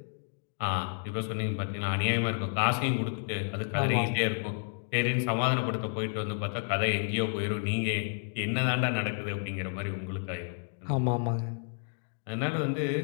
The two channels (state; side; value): silent; right; 57 dB below the other